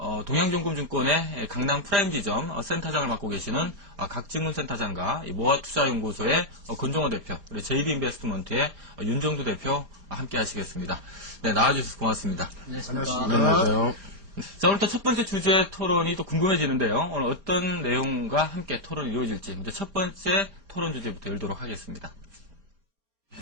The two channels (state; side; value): late; left; 4.3 ms